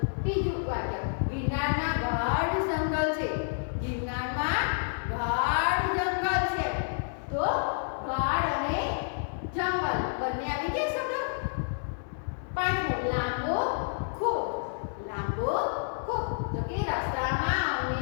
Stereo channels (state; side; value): silent; right; 58 dB below the other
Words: બીજું વાક્ય ગિરનારમાં ગાઢ જંગલ છે. ગિરનારમાં ગાઢ જંગલ છે. તો ગાઢ અને જંગલ બંને આવી ગયા શબ્દ. પાંચમું લાંબો ખૂબ. લાંબો ખૂબ. તો કે રસ્તામાં